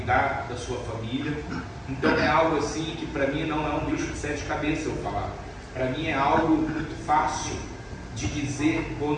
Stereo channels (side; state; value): both; identical; correlation 1.00